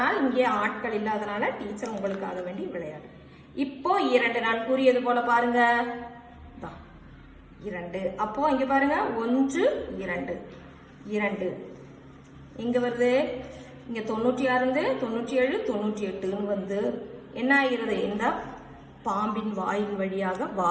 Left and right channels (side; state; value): both; identical; correlation 1.00